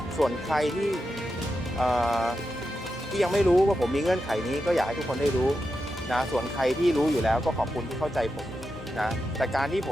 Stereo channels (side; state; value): both; normal; correlation 0.88